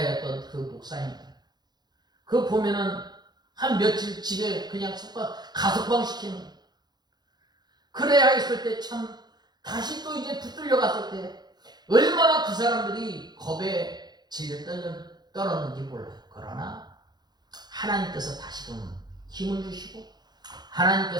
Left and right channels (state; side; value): late; left; 0.20 ms